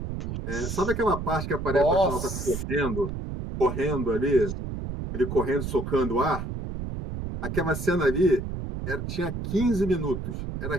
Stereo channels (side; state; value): right; noise; rumble, 5 dB below the sound